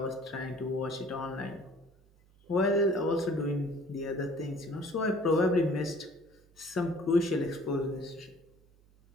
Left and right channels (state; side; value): noise; right; hum, 30 dB below the sound